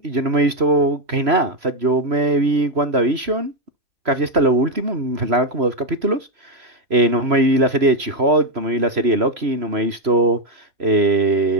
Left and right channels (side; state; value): left; late; 3.0 ms